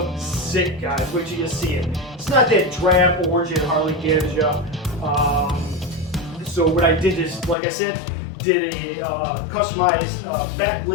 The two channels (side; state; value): right; drops out; at 7.6 s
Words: sick, guys. Wait till you see it. It's not that drab orange that Harley gives you. So what I did is, like I said, did a customized